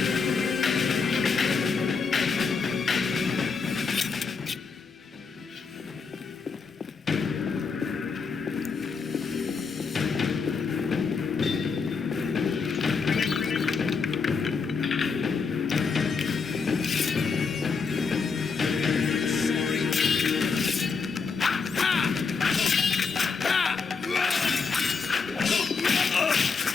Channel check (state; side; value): quieter; right; 5.1 dB